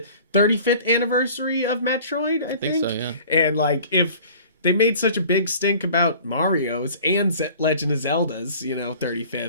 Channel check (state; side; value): inverted; both; correlation -0.46